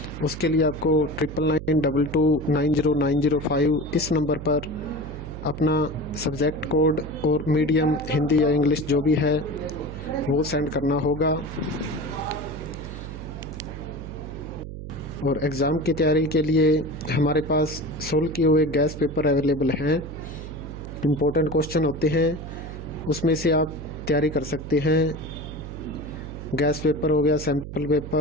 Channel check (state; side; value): noise; right; hum, 10 dB below the sound